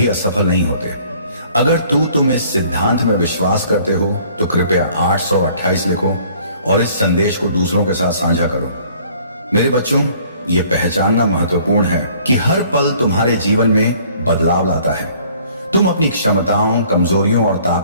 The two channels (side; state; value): both; inverted; correlation -0.56